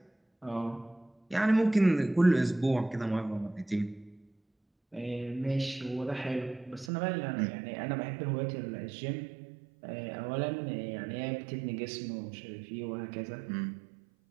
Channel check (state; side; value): drops out; left; at 6.9 s